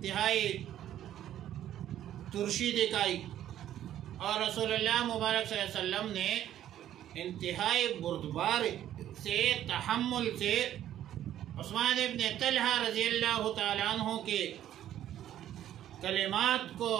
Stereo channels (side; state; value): left; quieter; 11.7 dB